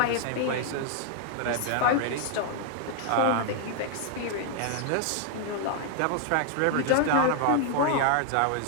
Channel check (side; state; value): both; different; correlation 0.00